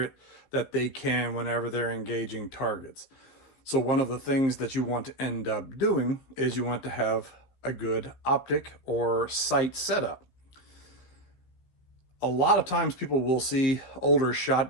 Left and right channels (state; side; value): late; right; 15 ms